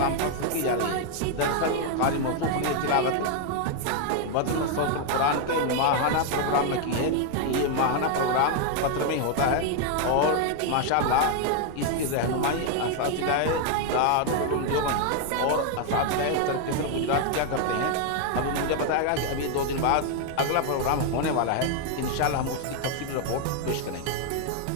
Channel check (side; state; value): both; different; correlation 0.00